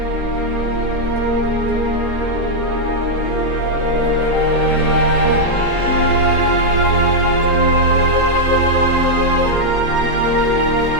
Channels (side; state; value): left; late; 4.3 ms